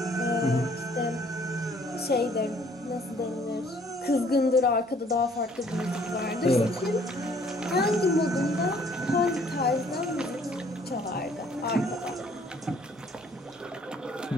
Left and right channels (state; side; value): normal; both; correlation 0.60